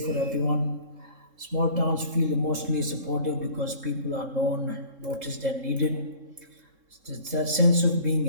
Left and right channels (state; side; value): late; left; 3.7 ms